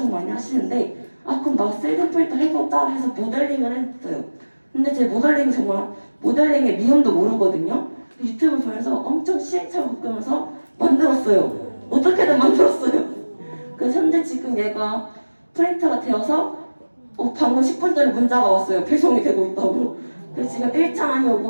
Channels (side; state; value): both; inverted; correlation -1.00